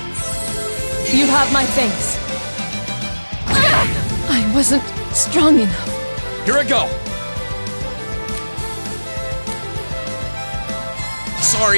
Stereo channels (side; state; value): both; inverted; correlation -1.00